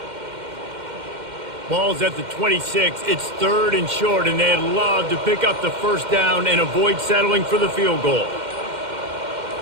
Ball's at the 26. It's 3rd and short, and they'd love to pick up the first down and avoid settling for the field goal.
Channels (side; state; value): left; late; 2.1 ms